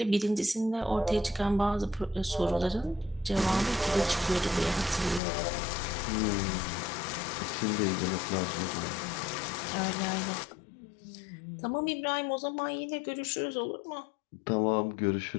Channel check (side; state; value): right; drops out; at 5.2 s